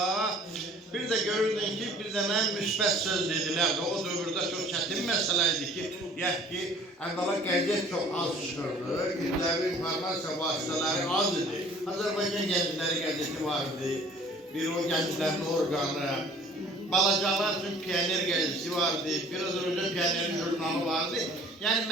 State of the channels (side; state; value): both; normal; correlation 0.51